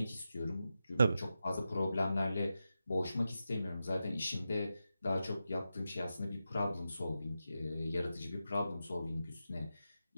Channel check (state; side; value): inverted; both; correlation -0.90